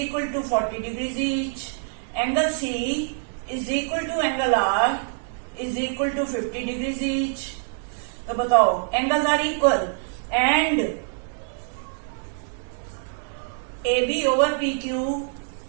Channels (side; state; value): left; silent; digital silence